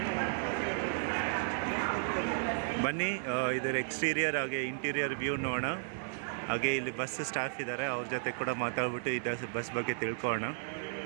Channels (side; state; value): left; silent; 55 dB below the other